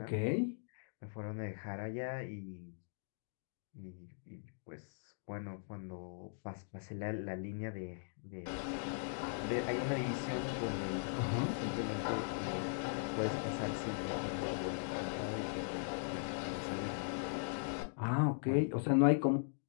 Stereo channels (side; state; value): right; silent; digital silence